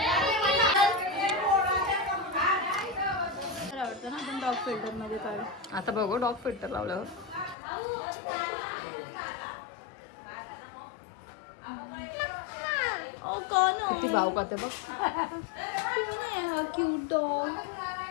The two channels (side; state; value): right; drops out; at 7.6 s